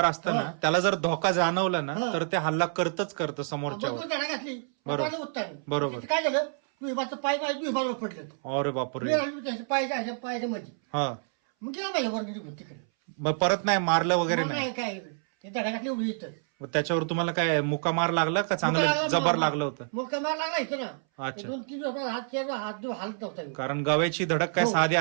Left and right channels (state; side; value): silent; left; 59 dB below the other